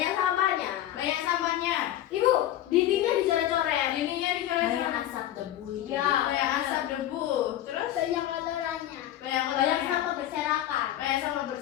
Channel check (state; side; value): quieter; right; 12.8 dB